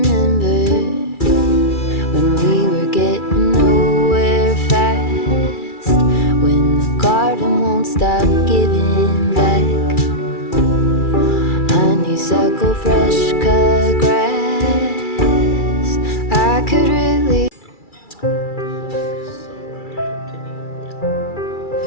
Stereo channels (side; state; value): right; late; 2.3 ms